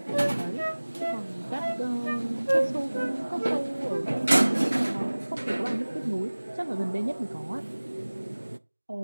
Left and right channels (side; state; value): both; inverted; correlation -1.00